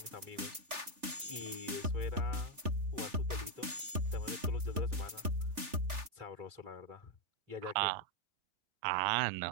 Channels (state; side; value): late; left; 3.4 ms